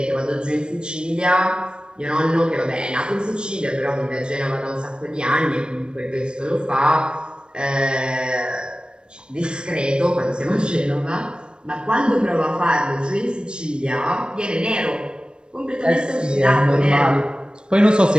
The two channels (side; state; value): left; late; 0.053 ms